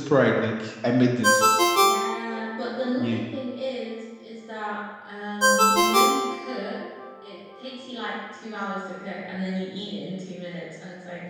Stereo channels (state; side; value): identical; both; correlation 1.00